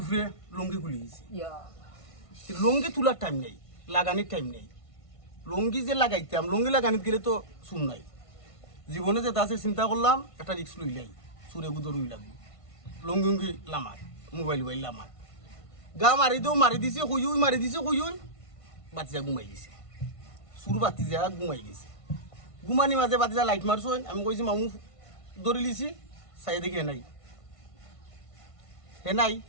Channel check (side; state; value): right; late; 1.5 ms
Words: উপরে লঙ্গি খুলে গেছি লঙ্গি তোলার টাইম নেই লাগানির টাইম নেই লঙ্গি যে লাগাইতাম লঙ্গি লাগানিতে গেলে তো শুন নাই জীবনে যেটা আছে চিন্তা করলাম একটা রিক্স লইলাই সুরে গুদর উই লাগবে লঙ্গি উঙ্গি লামার মোবাইল লামার গা মারি দেও মারি দিছে কই মারি দিছে কই বাচ্চা ঘুমাই গেছে সুর বাতি যা ঘুমাই গেছে ঘুমানি মাঝে বাচ্চা লাইট মারছো আমি কইছি মামু দৌড়ি লিছি চাই দেখি হে নাই